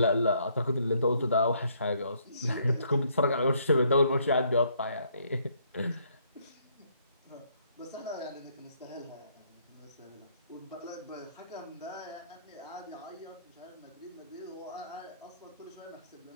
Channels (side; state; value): both; inverted; correlation -0.69